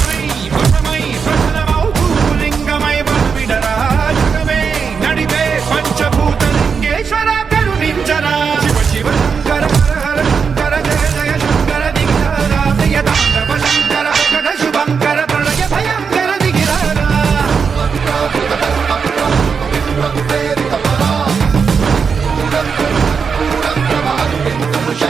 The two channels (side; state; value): left; quieter; 5.9 dB